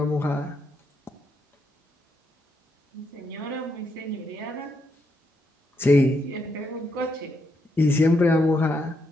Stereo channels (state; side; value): normal; both; correlation 0.79